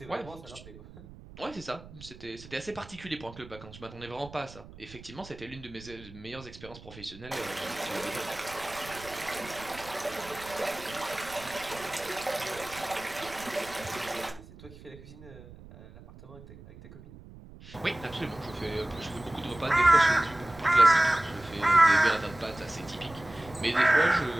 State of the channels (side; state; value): right; noise; rumble, 18 dB below the sound